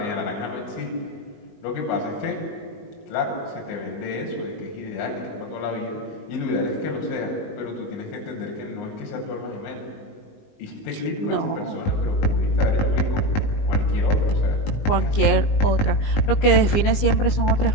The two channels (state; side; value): late; right; 19 ms